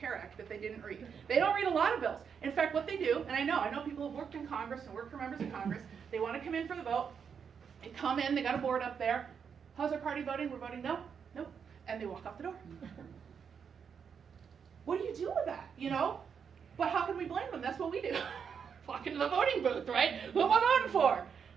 Act that they didn't read. They don't read a lot of bills. In fact, what they do, and I know people who've worked in Congress and worked for members of Congress, they want to come in for the vote. They come in, they got a board up there. How's our party voting? We're voting no, no, and they walk out the door. What do you do with that, you know? But how can we blame them? That's what we do. Walk into the voting booth, right? Who am I voting for?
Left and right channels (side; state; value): left; quieter; 6.8 dB